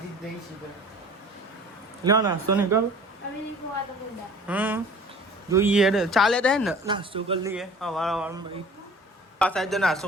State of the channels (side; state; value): both; normal; correlation 0.46